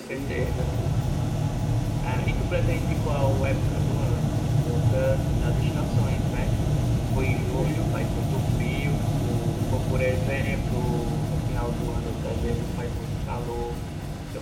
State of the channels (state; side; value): identical; both; correlation 1.00